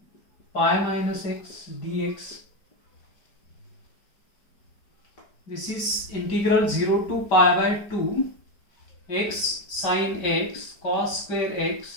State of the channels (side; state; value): right; late; 4.9 ms